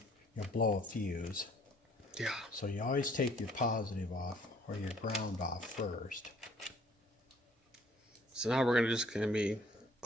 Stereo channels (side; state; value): both; normal; correlation 0.59